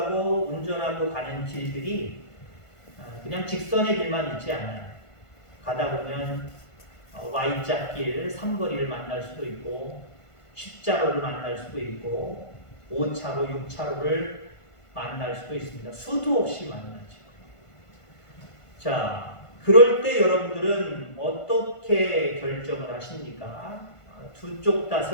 운전하고 가는 길들이 그냥 직선의 길만 있지 않아요. 가다 보면 Y자길, 삼거리를 만날 수도 있고 십자로를 만날 수도 있고 5차로, 6차로를 만날 수도 있습니다. 수도 없이 만나죠. 자, 그럴 때 여러분들은 어떻게 결정을 하십니까? 두 쪽 다,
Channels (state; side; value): late; right; 1.5 ms